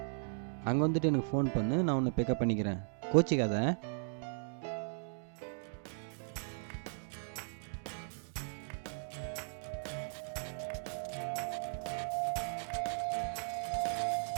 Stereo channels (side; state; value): left; silent; digital silence